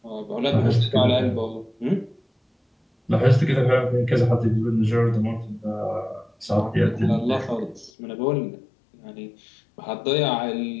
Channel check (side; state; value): right; drops out; at 7.9 s